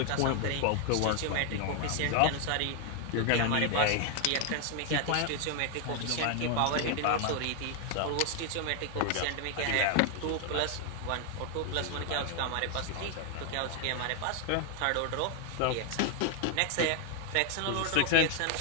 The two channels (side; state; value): both; different; correlation 0.00